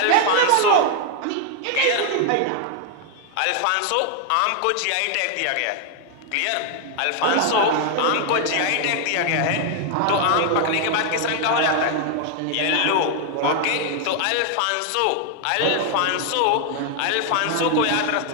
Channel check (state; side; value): different; both; correlation 0.00